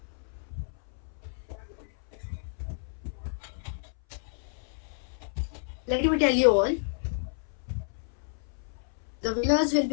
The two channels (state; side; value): silent; right; 57 dB below the other